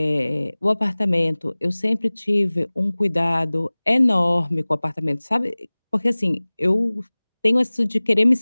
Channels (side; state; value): both; inverted; correlation -1.00